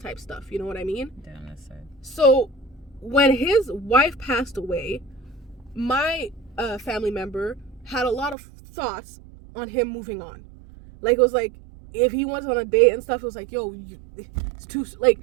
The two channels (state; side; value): drops out; left; at 8.3 s